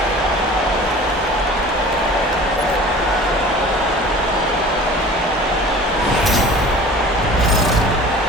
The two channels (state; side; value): normal; both; correlation 0.43